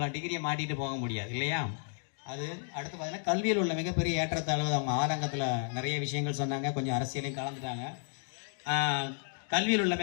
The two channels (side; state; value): right; silent; digital silence